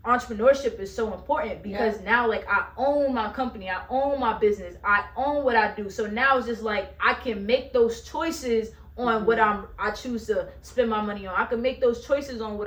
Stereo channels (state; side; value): identical; both; correlation 1.00